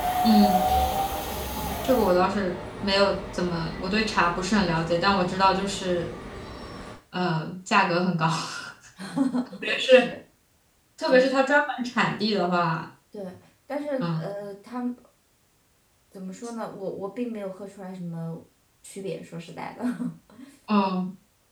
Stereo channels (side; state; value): both; identical; correlation 1.00